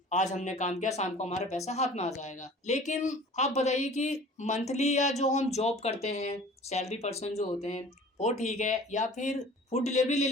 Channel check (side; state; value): both; normal; correlation 0.45